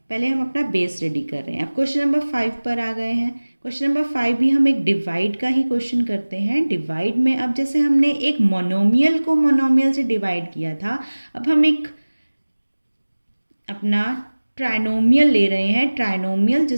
पहले हम अपना बेस रेडी कर रहे हैं। अब क्वेश्चन नंबर 5 पर आ गए हैं। क्वेश्चन नंबर 5 भी हम एक डिवाइड का ही क्वेश्चन करते हैं। डिवाइड में अब जैसे हमने एक मोनोमियल को मोनोमियल से डिवाइड किया था, अब हम एक अपना ट्राइनोमियल ले रहे हैं। ट्राइनोमियल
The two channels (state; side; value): inverted; both; correlation -1.00